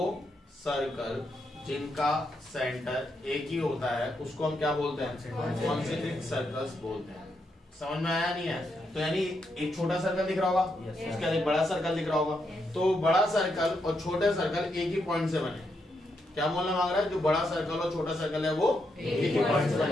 सर्कल जिनका सेंटर एक ही होता है उसको हम क्या बोलते हैं कॉन्सेंट्रिक सर्कल्स बोलते हैं। समझ में आया नहीं है? तो यानी एक छोटा सर्कल दिख रहा होगा, उसके बाद एक बड़ा सर्कल दिख रहा होगा, तो बड़ा सर्कल और छोटे सर्कल एक ही पॉइंट से बने। क्या बोलना मांग रहा है? जो बड़ा सर्कल और छोटा सर्कल है वो एक ही पॉइंट से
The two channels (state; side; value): normal; both; correlation 0.81